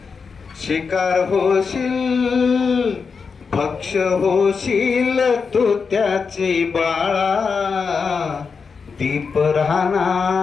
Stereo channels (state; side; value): quieter; right; 5.4 dB